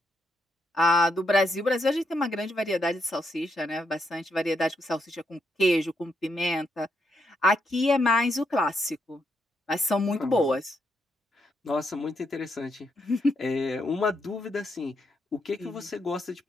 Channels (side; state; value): both; normal; correlation 0.79